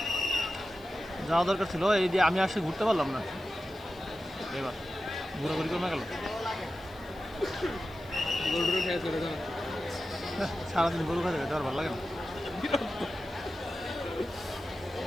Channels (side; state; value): left; noise; hiss, 27 dB below the sound